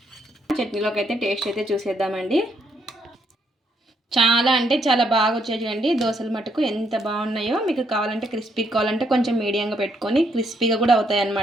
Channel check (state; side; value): normal; both; correlation 0.74